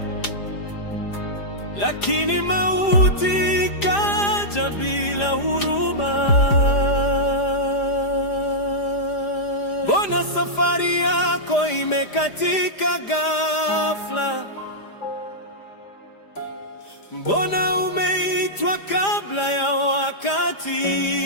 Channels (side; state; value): right; late; 5.0 ms